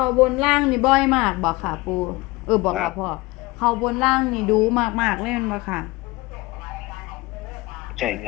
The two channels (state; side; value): quieter; right; 21.8 dB